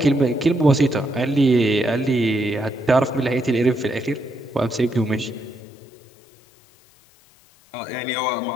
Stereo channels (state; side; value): drops out; right; at 5.6 s